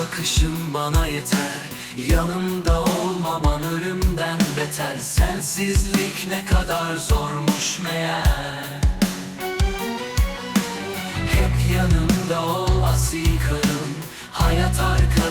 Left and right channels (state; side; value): identical; both; correlation 1.00